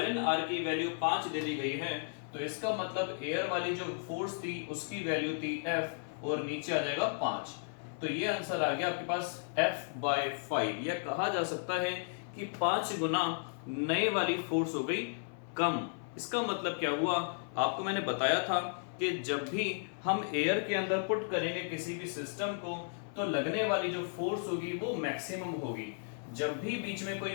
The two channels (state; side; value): silent; right; 55 dB below the other